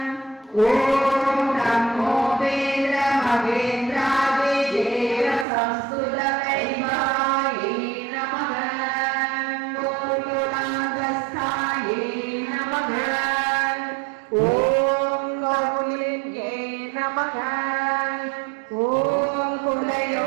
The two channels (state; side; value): drops out; left; at 5.5 s